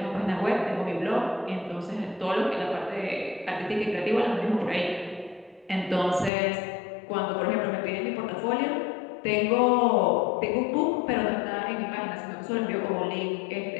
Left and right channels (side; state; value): right; drops out; at 6.3 s